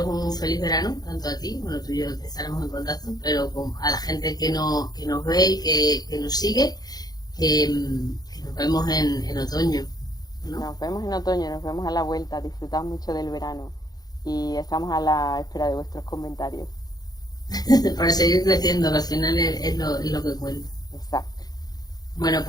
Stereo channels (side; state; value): right; late; 0.19 ms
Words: un feliz verano, tanto a ti, bueno, tú y yo estaremos en contacto, pero a la gente que nos ve y que nos sigue, que nos vemos en otoño, ¿no? Nos vemos en otoño, nos vemos a la vuelta. Disfrutad mucho del verano y estamos a la espera de vuestros comentarios. Para seguir creciendo, que al final es lo que cuenta. Exacto. Bueno,